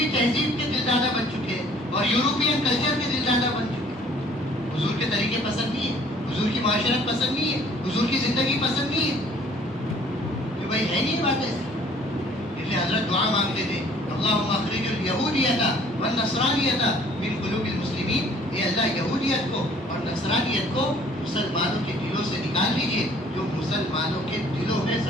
تہذیب کے دلدادہ بن چکے ہیں اور یورپین کلچر کے دلدادہ بن چکے ہیں. حضور کے طریقے پسند نہیں ہے، حضور کی معاشرت پسند نہیں ہے، حضور کی زندگی پسند نہیں ہے. کہ بھائی ہے نہیں بات ایسی. اس لیے حضرت دعا مانگتے تھے اللہم اخرج الیہودیۃ والنصرانیۃ من قلوب المسلمین. اے اللہ یہودیت کو اور نصرانیت کو مسلمانوں کے دلوں سے نکال لیجئے، جو مسلمانوں کے دلوں میں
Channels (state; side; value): normal; both; correlation 0.56